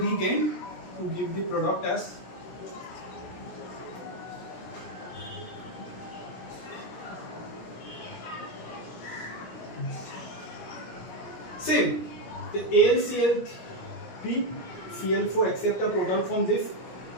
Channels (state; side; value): late; right; 17 ms